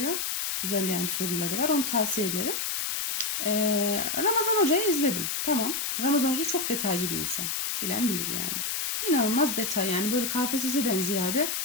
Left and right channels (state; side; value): noise; left; hiss, 1 dB below the sound